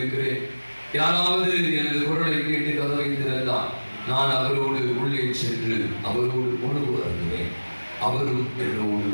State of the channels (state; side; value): inverted; both; correlation -1.00